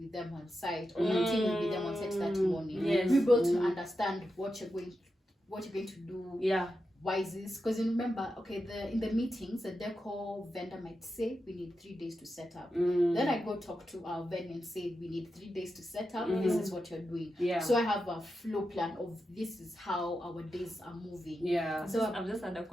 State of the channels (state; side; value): normal; both; correlation 0.89